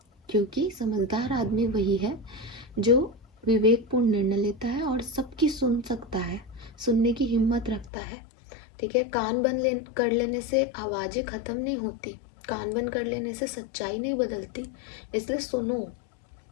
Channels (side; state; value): right; drops out; at 7.9 s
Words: क्योंकि समझदार आदमी वही है जो विवेकपूर्ण निर्णय लेता है और सबकी सुन सकता है, सुनने की हिम्मत रखता है, ठीक है। कान बंद कर लेने से आवाज़ें ख़त्म नहीं होती, कान बंद कर लेने से सच्चाई नहीं बदलती, इसलिए सुनो,